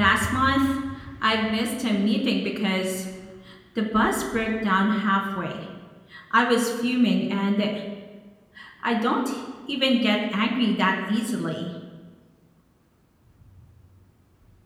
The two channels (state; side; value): identical; both; correlation 1.00